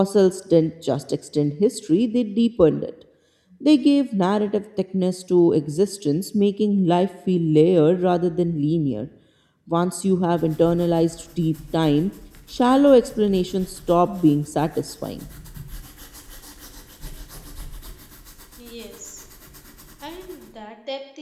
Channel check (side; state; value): both; identical; correlation 1.00